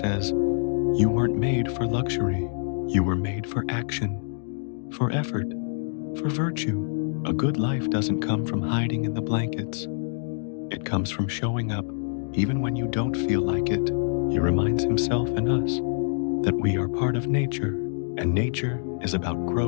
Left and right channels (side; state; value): right; silent; digital silence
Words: you weren't made for luxury. You were made for action, for effort, for virtue. A good life doesn't come from hiding in the blankets. It comes from showing up, even when you don't feel like it. He reminds himself and us that we are part of nature, and nature is about